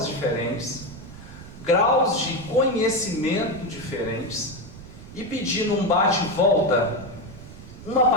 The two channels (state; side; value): noise; right; rumble, 15 dB below the sound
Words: diferentes, graus de conhecimento diferentes, e pedi num bate-volta uma